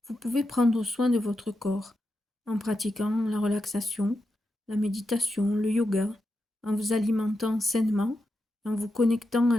vous pouvez prendre soin de votre corps en pratiquant la relaxation, la méditation, le yoga, en vous alimentant sainement, en vous connectant à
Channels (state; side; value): normal; both; correlation 0.87